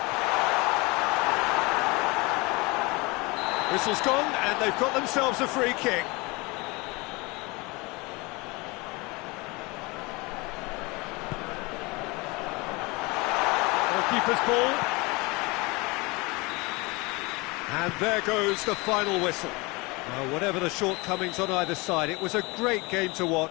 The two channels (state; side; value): quieter; right; 25.4 dB